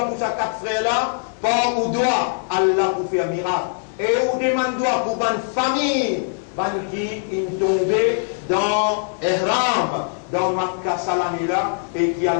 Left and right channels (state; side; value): silent; right; digital silence